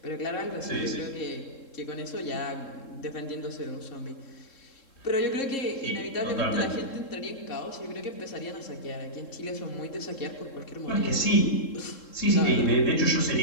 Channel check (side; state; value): right; late; 3.7 ms